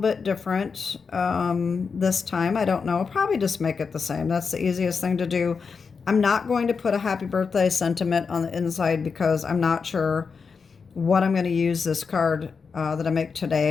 different this time. I don't know. I'll probably just make it the same. That's the easiest thing to do. I'm not going to put a happy birthday sentiment on the inside because I'm not sure what I'm going to use this card that I make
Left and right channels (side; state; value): right; quieter; 5.4 dB